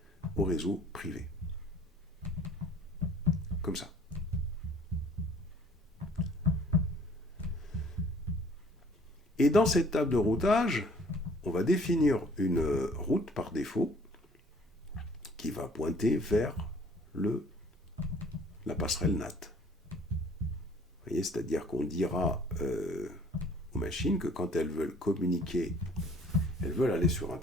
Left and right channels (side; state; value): both; normal; correlation 0.55